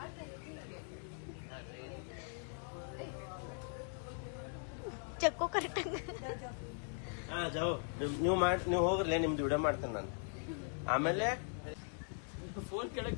ಚಕ್ಕೋ ಕರೆಕ್ಟಂಗ. ನೀವು ಹೋಗ್ರಿ, ನಿಮ್ದು ವಿಡಿಯೋ ಮಾಡ್ತೇನೆ ನಾನು. ಆಮೇಲೆ ಫೋನ್ ಕೆಳಗ್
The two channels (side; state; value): right; silent; 51 dB below the other